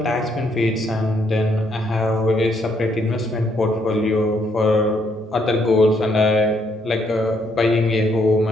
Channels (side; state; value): both; normal; correlation 0.72